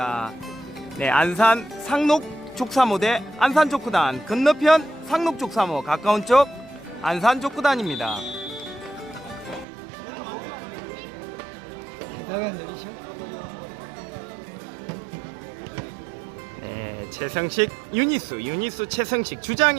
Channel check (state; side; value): drops out; left; at 9.7 s